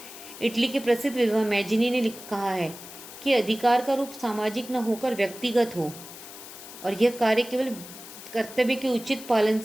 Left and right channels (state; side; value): noise; left; hiss, 15 dB below the sound